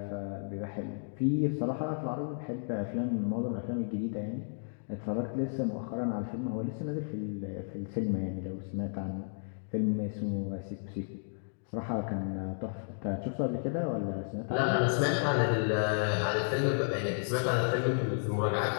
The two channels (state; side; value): silent; right; digital silence